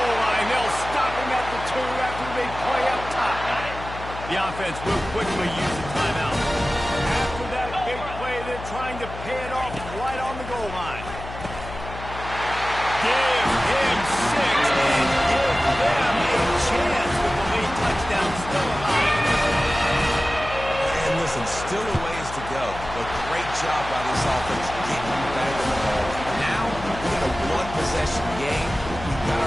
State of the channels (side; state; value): left; noise; hum, 11 dB below the sound